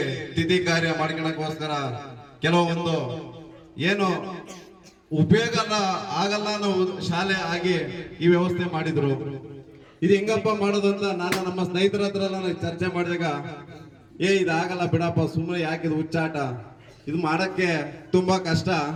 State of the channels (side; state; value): both; identical; correlation 1.00